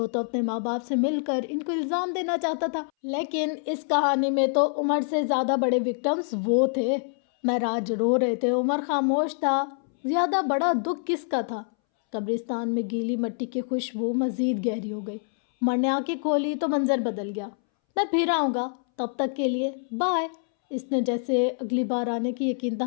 تو اپنے ماں باپ سے مل کر ان کو الزام دینا چاہتا تھا، لیکن اس کہانی میں تو عمر سے زیادہ بڑے وکٹمز وہ تھے۔ معراج رو رہے تھے، عمر خاموش تھا۔ زیادہ بڑا دکھ کس کا تھا؟ قبرستان میں گیلی مٹی کی خوشبو مزید گہری ہو گئی۔ عمر نے آنکھیں کھولی تو منظر بدل گیا۔ میں پھر آؤں گا، تب تک کے لیے بائے، اس نے جیسے اگلی بار آنے کی یقین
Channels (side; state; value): right; silent; 61 dB below the other